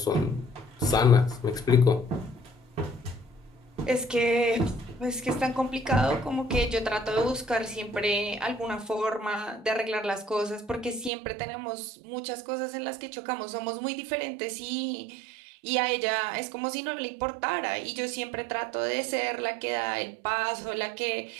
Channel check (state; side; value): drops out; left; at 11.1 s